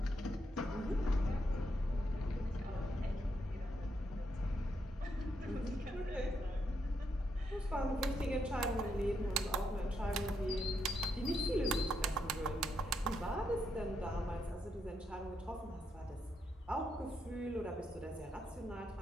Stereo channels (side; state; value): both; normal; correlation 0.80